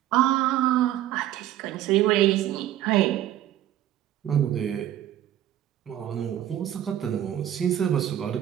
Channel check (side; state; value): left; quieter; 12.3 dB